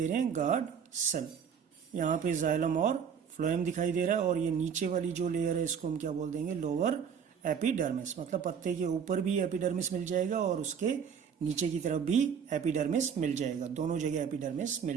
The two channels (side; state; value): left; quieter; 7.3 dB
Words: रहे हैं गार्ड सेल। यहाँ पे जाइलम और फ्लोएम दिखाई दे रहा है, और ये नीचे वाली जो लेयर है इसको हम क्या बोल देंगे, लोअर एपिडर्मिस। मतलब पत्ते के ऊपर भी एपिडर्मिस मिल जाएगा और उसके नीचे की तरफ भी एपिडर्मिस मिल जाएगा, दोनों जगह एपिडर्मिस